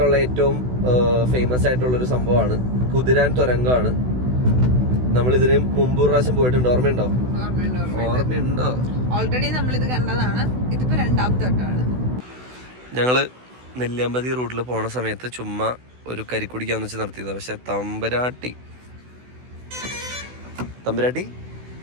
ഏറ്റവും ഫേമസ് ആയിട്ടുള്ള ഒരു സംഭവമാണ് കുതിരാൻ തുരങ്കമാണ്. നമ്മൾ ഇതിന് മുമ്പ് പ്രാവശ്യം പോയിട്ടുണ്ട്, ഓർമ്മയുണ്ടോ? ഓൾറെഡി നമ്മൾ ഇത് കണ്ടതാണ്. ഇതിപ്പോ രണ്ടാമത്തെ വട്ടമാണ്. ഞങ്ങള് നെല്ലിയാമ്പതി റൂട്ടിൽ പോണ സമയത്ത് ചുമ്മാ ഒരു കരിക്കുടിക്കാന്ന് വെച്ച് നിർത്തിയതാണ്. പക്ഷെ തമ്പുരാട്ടി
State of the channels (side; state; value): left; late; 16 ms